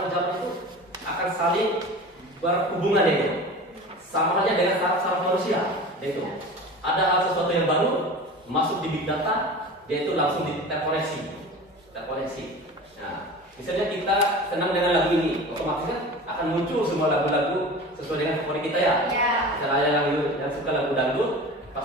zaman itu akan saling berhubungan itu. sama aja dengan saraf manusia. Itu ada hal sesuatu yang baru masuk di big data, dia itu langsung terkoneksi. Nah, misalnya kita senang dengan lagu ini, otomatis kan akan muncul semua lagu-lagu sesuai dengan favorit kita ya. Misalnya yang suka lagu dangdut,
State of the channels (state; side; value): normal; both; correlation 0.35